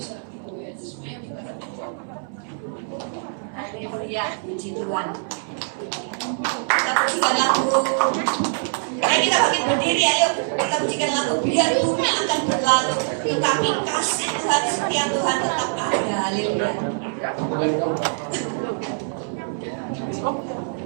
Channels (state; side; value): silent; left; 61 dB below the other